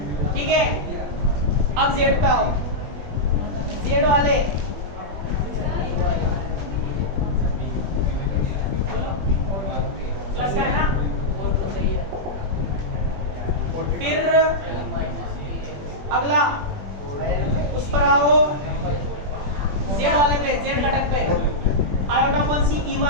ठीक है। अब Z पे आओ, Z वाले प्लस का है ना, फिर अगला उस पर आओ, Z वाले पे, Z घटक पे आयोटा अपॉन सी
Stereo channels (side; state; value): left; late; 21 ms